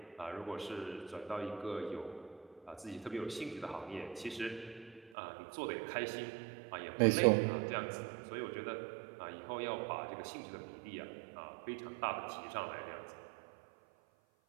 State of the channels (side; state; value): left; drops out; at 5.1 s